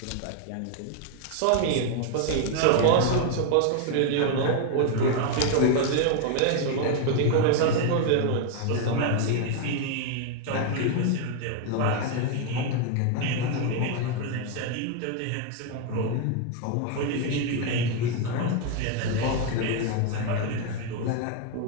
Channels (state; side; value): different; both; correlation 0.01